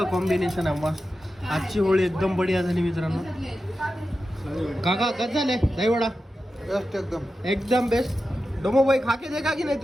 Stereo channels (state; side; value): normal; both; correlation 0.92